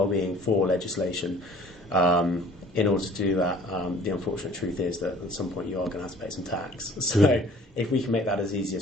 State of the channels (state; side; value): normal; both; correlation 0.51